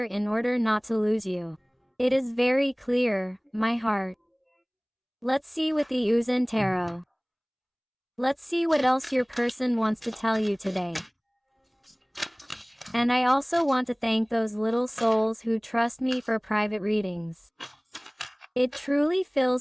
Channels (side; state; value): both; identical; correlation 1.00